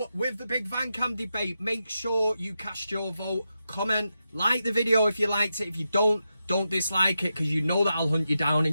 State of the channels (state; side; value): inverted; both; correlation -0.88